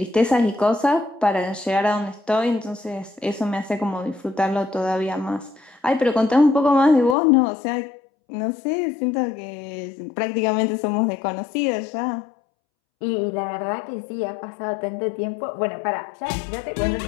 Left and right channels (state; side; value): drops out; right; at 7.2 s